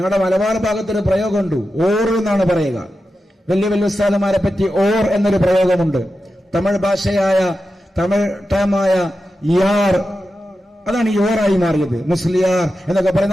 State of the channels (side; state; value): both; normal; correlation 0.91